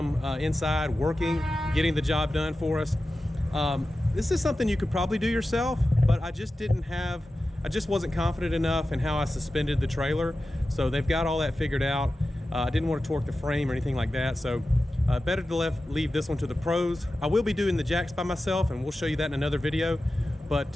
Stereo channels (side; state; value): both; normal; correlation 0.94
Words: inside working, getting the job done for us. This is something you could probably do yourself, but I just wasn't confident enough in how I suspended the trailer. So they've got all that figured out. I didn't want to torque the frame or anything like that. So better to leave this one to the pros. I will be doing the jacks by myself, and we'll show you that in another video.